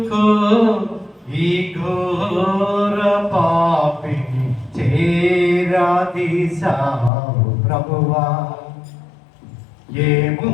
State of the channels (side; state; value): right; drops out; at 7.1 s